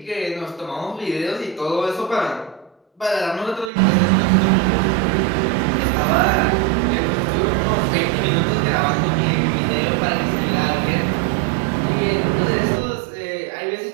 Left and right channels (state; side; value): drops out; left; at 3.7 s